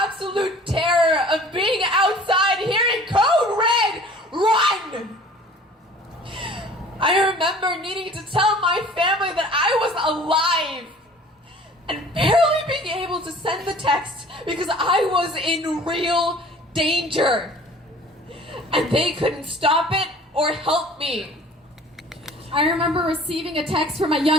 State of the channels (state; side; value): normal; both; correlation 0.48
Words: terror of being outside hearing code red, run! I remember needing to tell my family that I was alive and barely being able to send the text because I was in real danger and they couldn't stop it or help me. I remember receiving a text from my